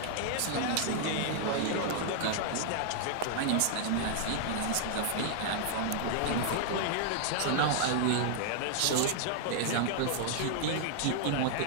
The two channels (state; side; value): different; both; correlation -0.01